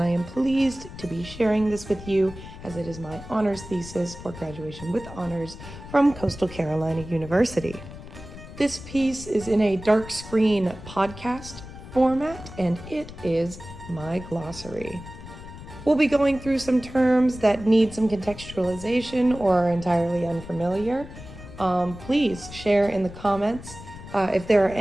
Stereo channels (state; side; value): noise; left; rumble, 14 dB below the sound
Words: I am pleased to be sharing this with you as it is my honors thesis for graduation with honors from Coastal Carolina University. This piece is in a dark screen podcast format, and it is my glossary. We'll be going through some terms that need some contextualization or are entirely unfamiliar. Please share in the comments if there are